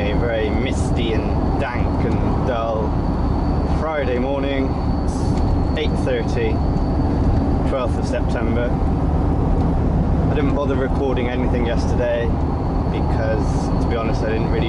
very misty and dank and dull Friday morning. It's 8:30, 12th of September. I didn't bother recording anything yesterday because, to be honest, I didn't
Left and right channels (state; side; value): identical; both; correlation 1.00